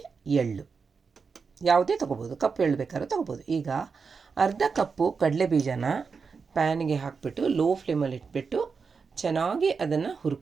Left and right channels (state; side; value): quieter; left; 5.2 dB